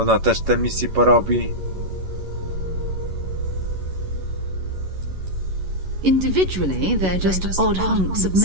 też te misje porobi. Individually, they're just odd hunks of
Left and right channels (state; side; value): late; left; 11 ms